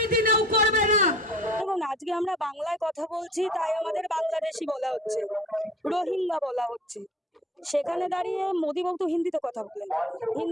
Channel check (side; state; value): both; normal; correlation 0.47